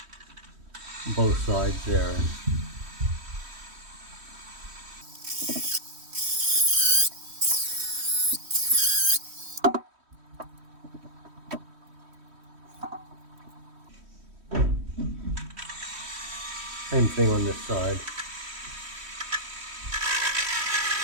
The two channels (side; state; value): left; late; 3.1 ms